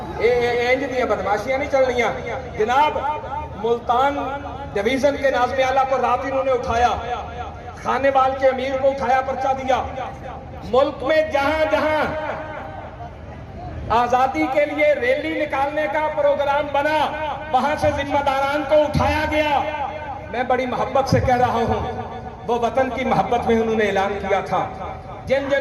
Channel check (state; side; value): identical; both; correlation 1.00